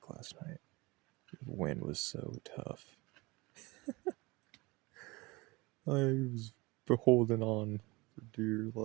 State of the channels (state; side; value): quieter; left; 23.8 dB